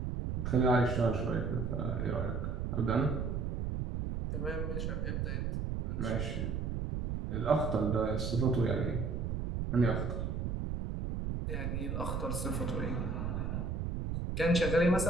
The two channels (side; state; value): right; noise; rumble, 2 dB below the sound